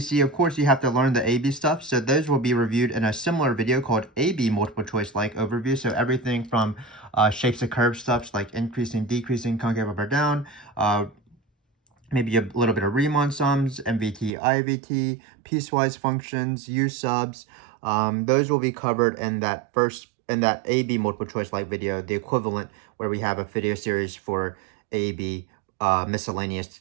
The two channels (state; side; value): drops out; left; at 14.3 s